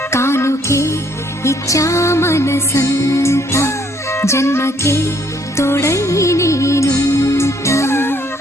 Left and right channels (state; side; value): normal; both; correlation 0.66